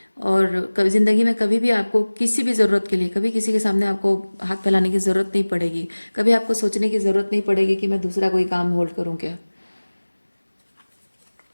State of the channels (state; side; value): inverted; both; correlation -1.00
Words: और कभी ज़िंदगी में कभी भी आपको किसी भी ज़रूरत के लिए कभी किसी के सामने आपको हाथ फैलाने की ज़रूरत नहीं पड़ेगी। कभी आपको सोचने की ज़रूरत नहीं पड़ेगी कि मैं दूसरा कोई काम होल्ड करूँ क्या।